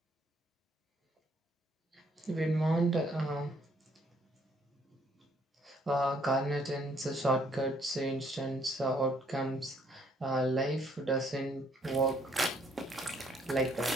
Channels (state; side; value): normal; both; correlation 0.66